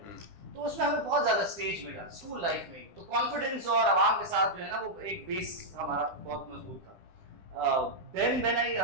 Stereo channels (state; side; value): late; left; 9.9 ms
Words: तो उसमें हमें बहुत ज़्यादा स्टेज मिला स्कूल लाइफ में. तो कॉन्फिडेंस और आवाम के साथ जो है ना वो एक बेस हमारा बहुत मजबूत था. Then when I